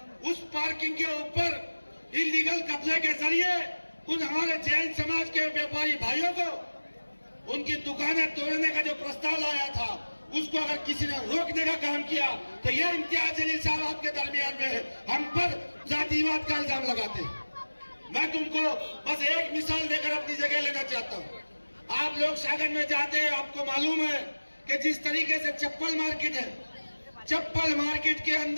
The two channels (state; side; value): inverted; both; correlation -1.00